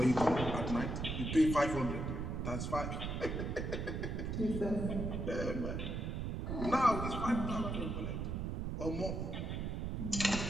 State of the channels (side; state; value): right; noise; rumble, 2 dB below the sound